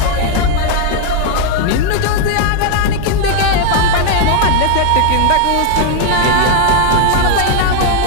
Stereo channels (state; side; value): different; both; correlation 0.00